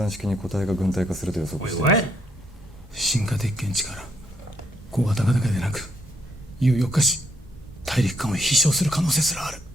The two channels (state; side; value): normal; both; correlation 0.74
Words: 式に個体が軍隊化すると予測 Wait, しています what? 進化鉄拳力小型化だけでなく有力化し大陸間を飛翔する可能性すらある